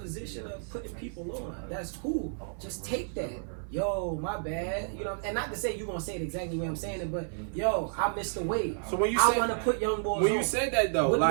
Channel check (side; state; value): left; silent; 56 dB below the other